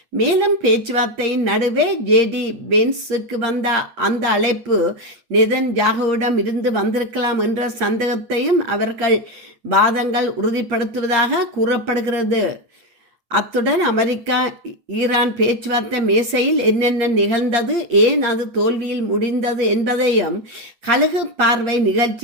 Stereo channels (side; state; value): left; late; 8.6 ms